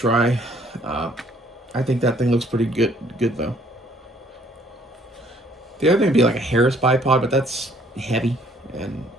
I think that thing looks pretty good though. The other thing would be like a Harris bipod, but that's heavy. And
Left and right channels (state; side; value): normal; both; correlation 0.61